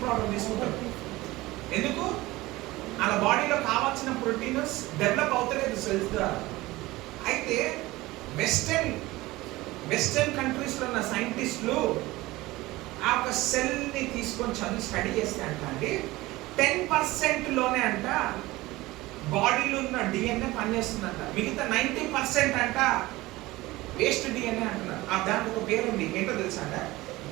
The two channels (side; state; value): left; quieter; 19.3 dB